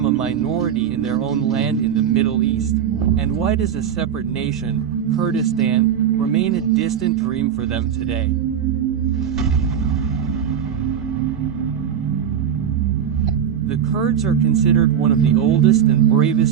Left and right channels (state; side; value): quieter; left; 8.7 dB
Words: a minority in their own land in the Middle East? And why does a separate nation, Kurdistan, remain a distant dream for them today? The Kurds are considered one of the oldest and